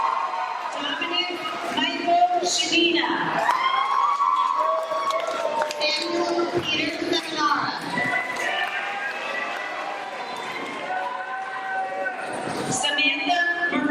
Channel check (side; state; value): both; identical; correlation 1.00